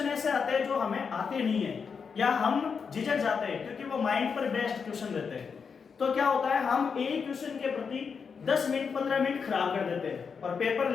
ऐसे आते हैं जो हमें आते नहीं है या हम झिझक जाते हैं क्योंकि वो माइंड पर बेस्ड क्वेश्चन रहते हैं। तो क्या होता है, हम एक क्वेश्चन के प्रति 10 मिनट 15 मिनट खराब कर देते हैं और पेपर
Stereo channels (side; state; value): right; quieter; 5.9 dB